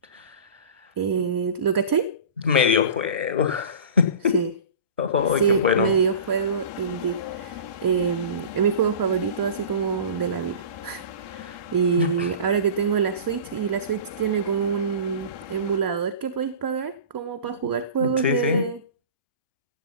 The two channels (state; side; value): inverted; both; correlation -0.37